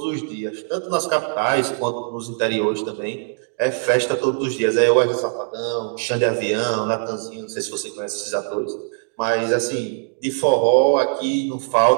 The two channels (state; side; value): silent; left; digital silence